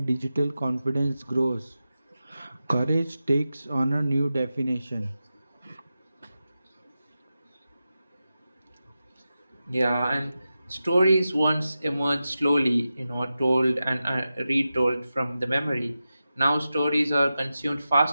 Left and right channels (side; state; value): both; inverted; correlation -0.92